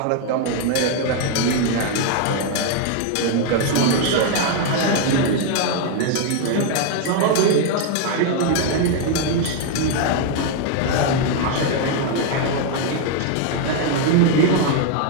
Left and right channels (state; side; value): different; both; correlation 0.00